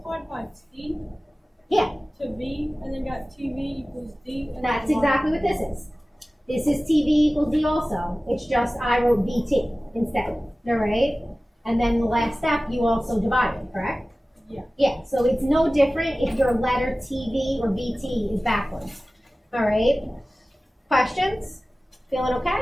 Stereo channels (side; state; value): both; normal; correlation 0.97